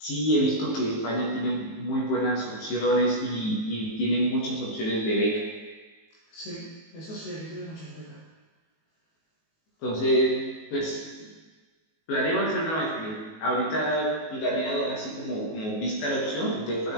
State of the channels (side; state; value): right; late; 19 ms